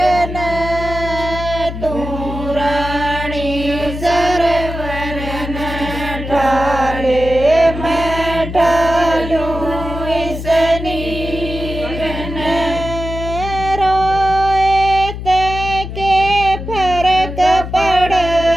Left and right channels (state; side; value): noise; left; hum, 8 dB below the sound